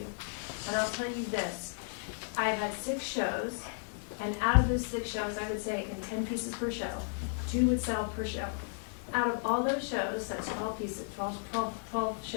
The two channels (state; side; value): silent; right; 55 dB below the other